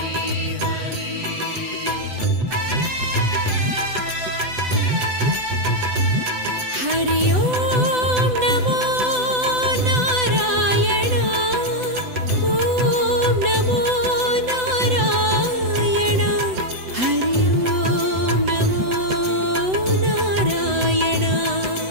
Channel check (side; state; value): left; late; 7.9 ms